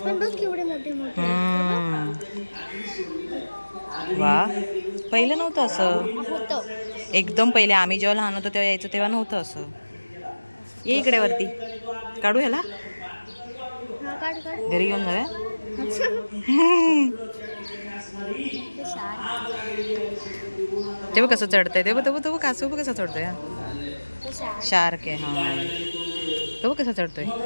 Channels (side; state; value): both; inverted; correlation -1.00